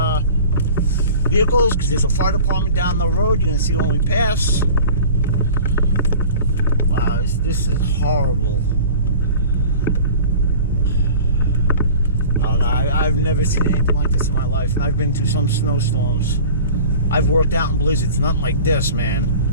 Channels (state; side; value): inverted; both; correlation -0.41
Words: vehicles, because there's a fire department down the road. You're gonna see when we pass. Wow, this is horrible. I don't know, I've never seen anything like this in my life, and I've been through some snowstorms. I've worked out in blizzards, nothing like this, man.